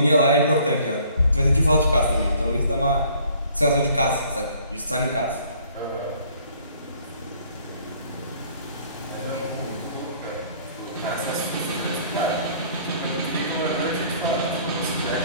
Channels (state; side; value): inverted; both; correlation -0.57